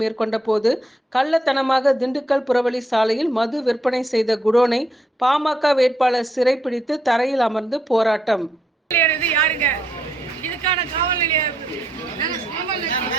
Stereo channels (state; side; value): normal; both; correlation 0.76